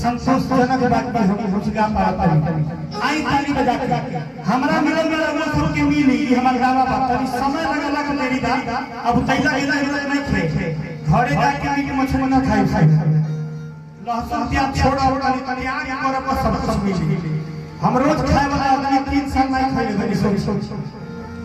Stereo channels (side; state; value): both; identical; correlation 1.00